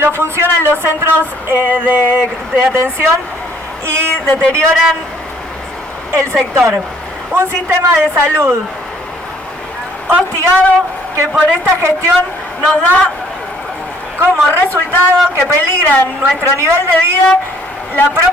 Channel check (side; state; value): both; normal; correlation 0.62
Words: funcionan los centros de atención y deterioran el sector. Un sistema de salud hostigado que por esta gestión nos da como resultado que peligran nuestro nivel de vida, la